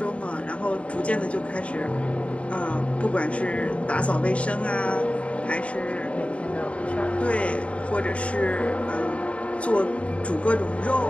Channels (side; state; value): right; late; 0.063 ms